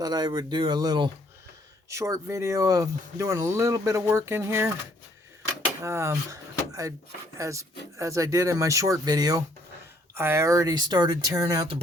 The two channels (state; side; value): normal; both; correlation 0.65